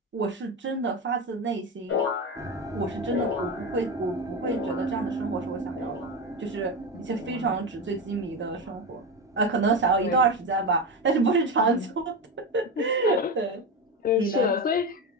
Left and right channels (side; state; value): both; normal; correlation 0.19